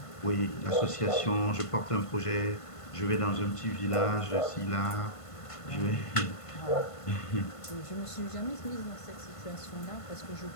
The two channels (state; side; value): late; right; 1.5 ms